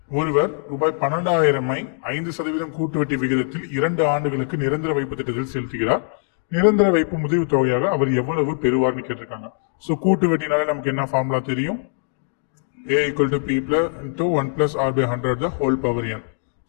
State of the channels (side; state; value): right; silent; digital silence